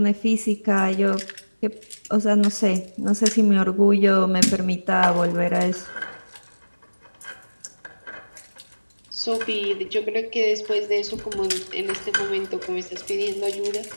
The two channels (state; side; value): inverted; both; correlation -1.00